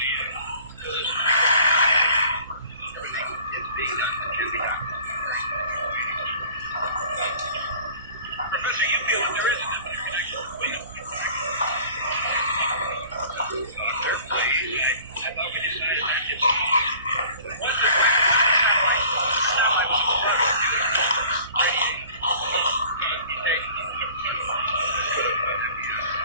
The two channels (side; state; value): both; inverted; correlation -0.47